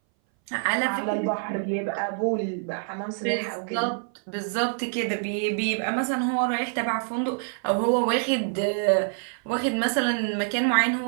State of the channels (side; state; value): left; silent; 59 dB below the other